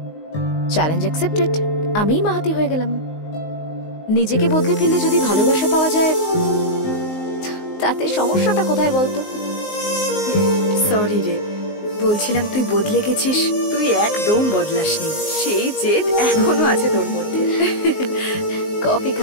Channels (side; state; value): right; late; 19 ms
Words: চ্যালেঞ্জ অ্যাকসেপ্টেড, আমিই মাহাতি হয়ে গেলাম। নিজেকে বদলে ফেললে যদি ভালোবাসা পাওয়া যায় তাতে সমস্যাটা কোথায় বলতো? সরি রে, বলছিলাম তুই বদলে গেছিস। তুই একদম বদলাসনি, সেই জেদ এখনো আছে তোর মধ্যে। কফি